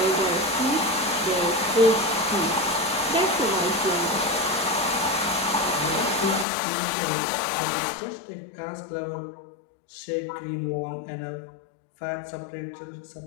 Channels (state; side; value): drops out; right; at 6.5 s